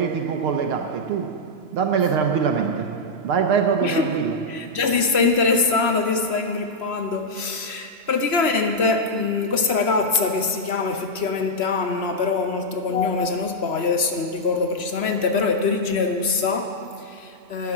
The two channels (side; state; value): left; late; 2.9 ms